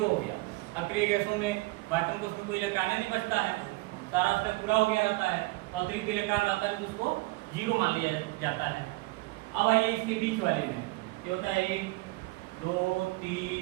हो गया। अक्रिय गैसों में वैक्यूम को उसमें कोई इलेक्ट्रॉन नहीं बचता है, सारा उसका पूरा हो गया रहता है, अतिरिक्त इलेक्ट्रॉन आता है तो उसको जीरो मान लिया जाता है। अब आइए इसके बीच वाले में ये होता है 1 2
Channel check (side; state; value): left; quieter; 22.6 dB